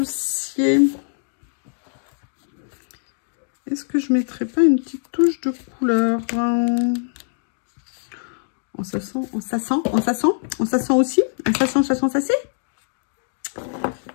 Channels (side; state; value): right; silent; digital silence